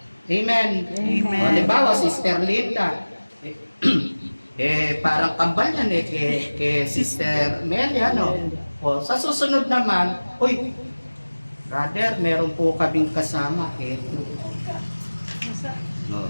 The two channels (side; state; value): both; inverted; correlation -1.00